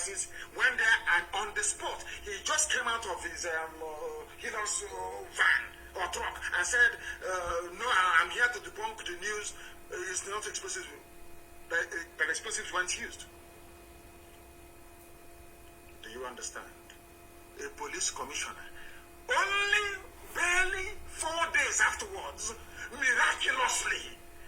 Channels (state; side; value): identical; both; correlation 1.00